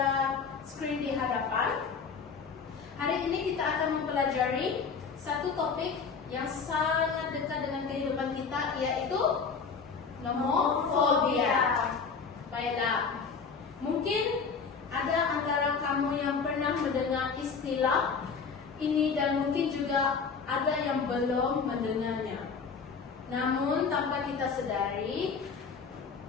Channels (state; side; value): quieter; right; 5.5 dB